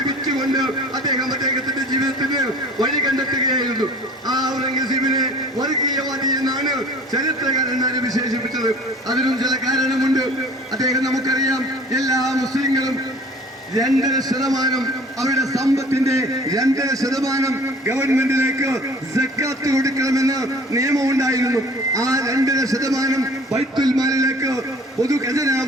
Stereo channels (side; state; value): both; normal; correlation 0.48